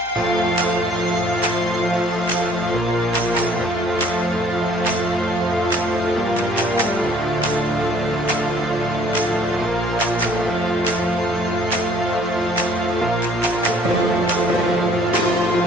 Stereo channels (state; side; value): noise; left; hum, 24 dB below the sound